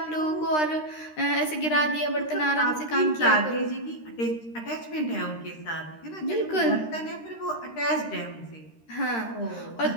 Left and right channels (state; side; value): late; right; 13 ms